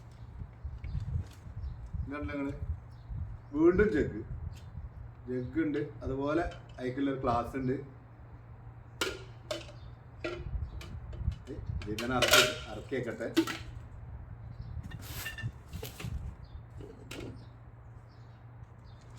ഇതല്ല നിങ്ങൾ വീണ്ടും ജഗ് ഉണ്ട്. അതുപോലെ അതിക്കുള്ളൊരു ഗ്ലാസ് ഉണ്ട്. ഇതിങ്ങനെ ഇറക്കി വെക്കട്ടെ.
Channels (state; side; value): identical; both; correlation 1.00